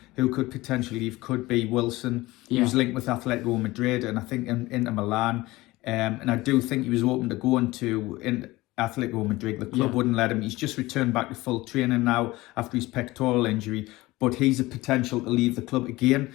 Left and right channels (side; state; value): right; quieter; 19.6 dB